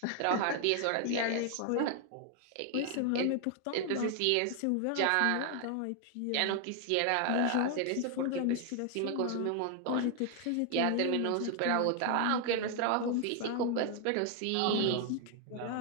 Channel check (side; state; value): both; different; correlation 0.00